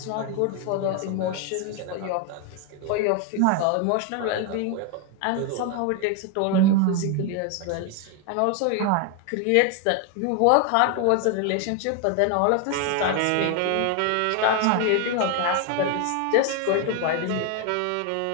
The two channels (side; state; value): both; different; correlation 0.01